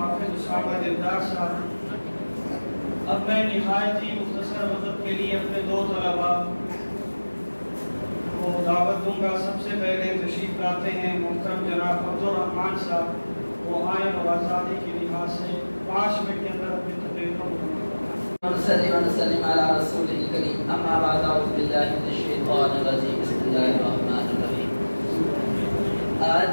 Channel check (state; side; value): inverted; both; correlation -1.00